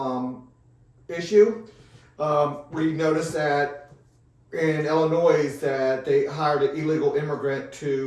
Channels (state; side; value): identical; both; correlation 1.00